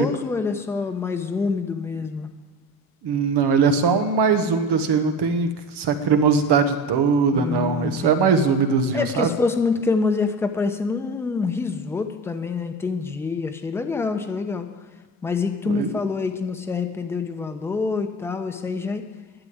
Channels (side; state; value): both; normal; correlation 0.32